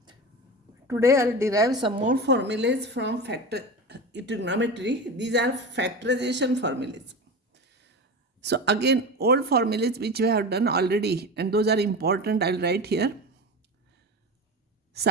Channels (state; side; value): normal; both; correlation 0.26